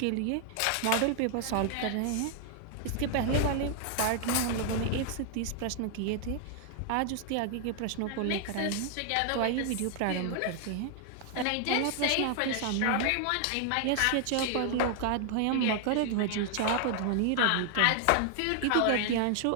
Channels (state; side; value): different; both; correlation 0.00